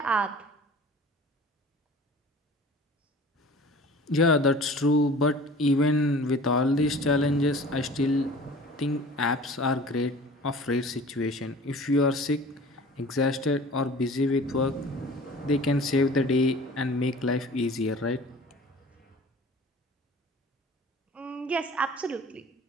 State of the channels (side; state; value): both; normal; correlation 0.44